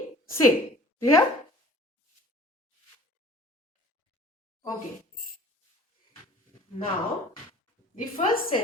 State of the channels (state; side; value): normal; both; correlation 0.48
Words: same. Clear? Okay. Now, the first